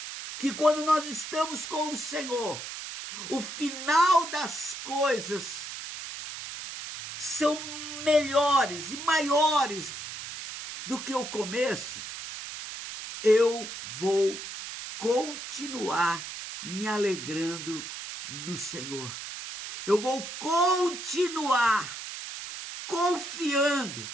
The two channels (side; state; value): right; noise; hiss, 9 dB below the sound